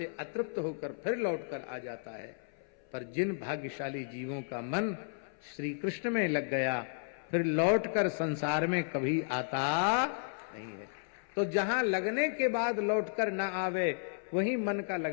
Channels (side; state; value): right; silent; 55 dB below the other